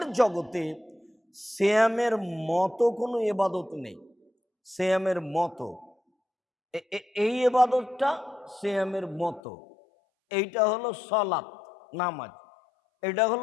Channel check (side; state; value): right; drops out; at 9.4 s